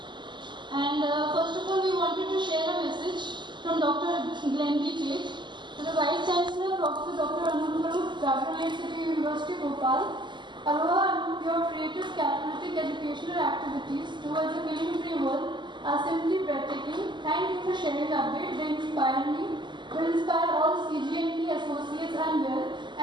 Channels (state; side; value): late; left; 0.22 ms